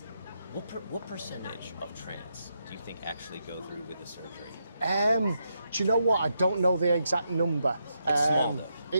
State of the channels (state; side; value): inverted; both; correlation -0.82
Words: what percentage of trans do you think actually go through with the surgery? Do you know what? I don't know the exact number. It's small though.